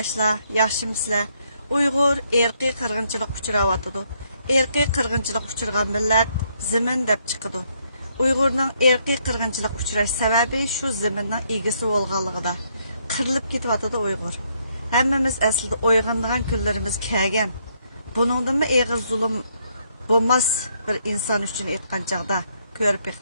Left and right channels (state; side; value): inverted; both; correlation -0.73